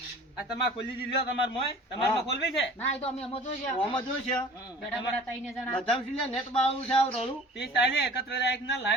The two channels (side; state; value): both; normal; correlation 0.45